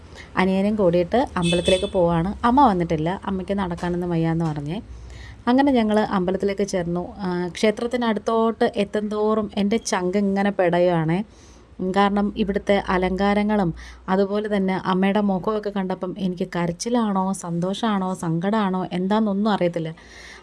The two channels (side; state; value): both; identical; correlation 1.00